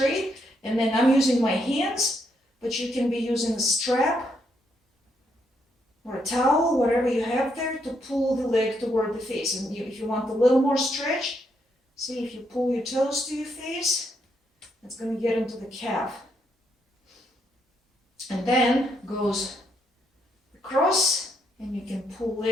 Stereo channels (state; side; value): normal; both; correlation 0.76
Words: And then I'm using my hands, but you can be using a strap or a towel, whatever you have there, to pull the leg toward the face. And if you want a little more stretch, see if you pull your toes to your face, it's going to get into the calf. And then goes across, and you can pull